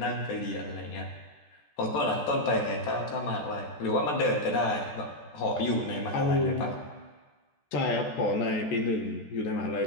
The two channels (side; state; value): right; late; 14 ms